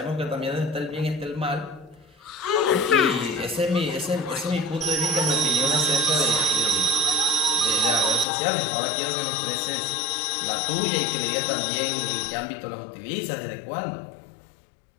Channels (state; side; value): drops out; right; at 8.2 s